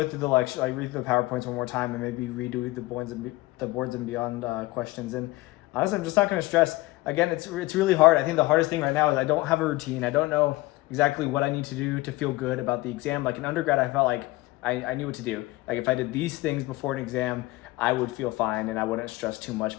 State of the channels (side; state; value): right; quieter; 20.1 dB